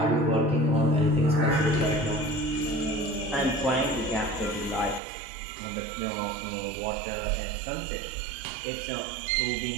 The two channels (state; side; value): drops out; left; at 5.0 s